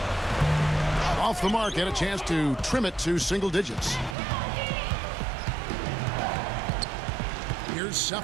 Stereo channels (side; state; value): left; drops out; at 4.2 s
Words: Off the mark, had a chance to trim it to single digits. Here's